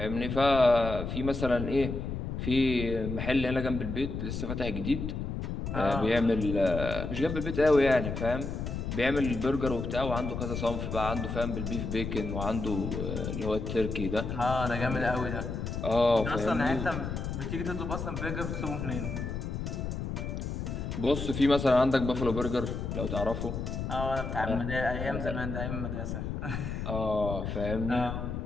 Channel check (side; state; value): left; noise; rumble, 4 dB below the sound